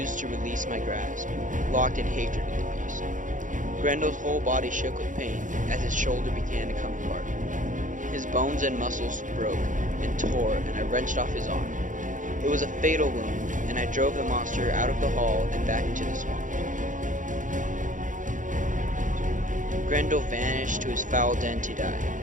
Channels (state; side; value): late; left; 0.37 ms